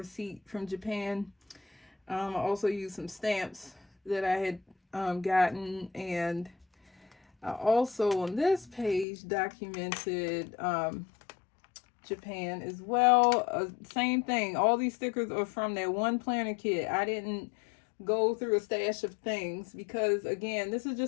from Japan. I also used some stamps that I had gotten. And I also on this page documented Japan as well. Same thing. All these stickers are from that one planner kit. I didn't go through a stash of things because, again, this is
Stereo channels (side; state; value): right; drops out; at 9.1 s